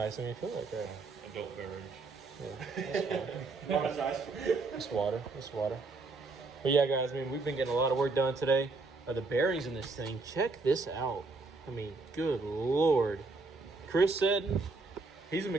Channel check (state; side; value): quieter; left; 3.8 dB